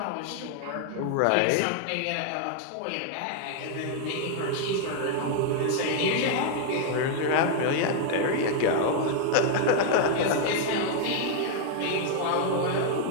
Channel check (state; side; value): different; both; correlation 0.00